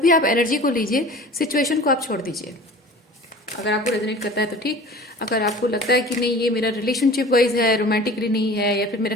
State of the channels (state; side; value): normal; both; correlation 0.42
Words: आप एनर्जी को लीजिए, सिचुएशन को आप छोड़ दीजिए। अगर आपको रेजोनेट करता है तो ठीक, अगर आपको लगता है कि नहीं ये मेरा रिलेशनशिप वाइज है, रोमांटिकली नहीं है, या फिर मेरा